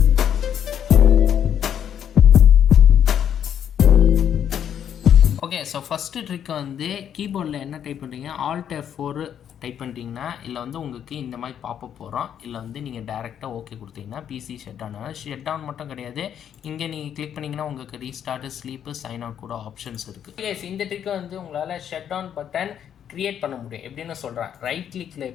ஓகே, ஸோ ஃபஸ்ட்டு ட்ரிக் வந்து கீபோர்டில் என்ன டைப் பண்ணுறீங்க, Alt F4 டைப் பண்ணிட்டீங்கன்னா இல்லை வந்து உங்களுக்கு இந்த மாதிரி பாப்பப் போகிறோம். இல்லை வந்து நீங்கள் டேரெக்டாக ஓகே கொடுத்தீங்கன்னா பிசி ஷட் டவுன் மட்டும் கிடையாது, இங்கே நீங்கள் கிளிக் பண்ணிங்கன்னா உங்களுக்கு ரீஸ்டார்ட், ஸ்லீப்பு, சைன் அவுட் கூட ஆப்ஷன்ஸ் இருக்குது. எஸ், இந்த ட்ரிக்கை வந்து உங்களால் ஷட் டவுன் பட்டன் க்ரியேட் பண்ண முடியும். எப்படின்னு சொல்கிறேன், ரைட் கிளிக்கில்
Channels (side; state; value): right; quieter; 9.2 dB